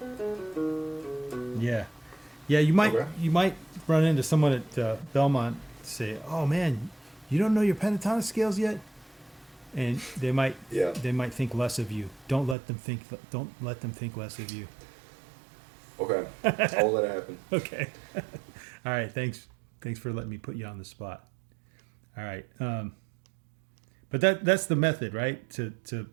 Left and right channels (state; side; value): drops out; left; at 12.6 s